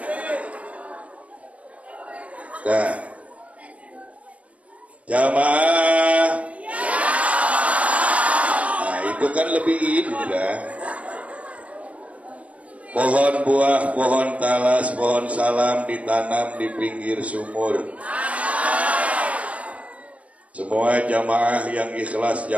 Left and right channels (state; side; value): late; left; 0.067 ms